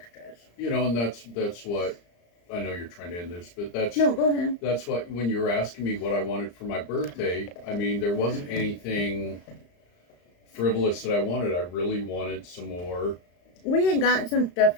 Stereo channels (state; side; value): late; right; 34 ms